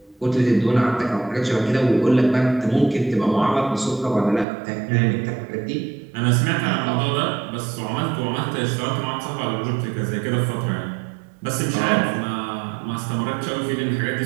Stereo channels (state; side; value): drops out; left; at 4.5 s